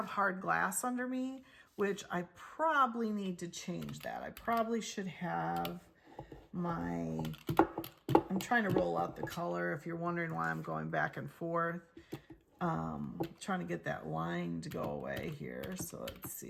hard glass under me, which I probably need to change that. I probably should have my, I'm trying to roll out the color if you're wondering why I'm going back and forth. Trying to get that line to go away here. So let's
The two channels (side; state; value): both; identical; correlation 1.00